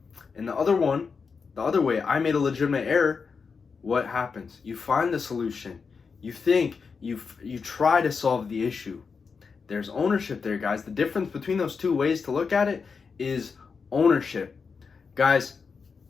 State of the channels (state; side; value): quieter; right; 5.3 dB